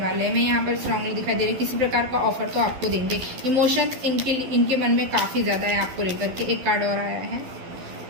हैं। मैं यहाँ पर स्ट्रांगली दिखाई दे रही है, किसी प्रकार का ऑफर तो आपको देंगे। इमोशंस इनके मन में काफ़ी ज़्यादा है आपको लेकर के। एक कार्ड और आया है,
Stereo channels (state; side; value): late; left; 12 ms